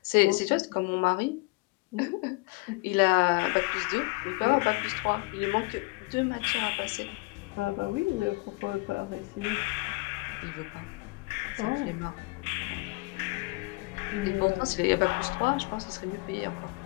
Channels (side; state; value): right; quieter; 25.7 dB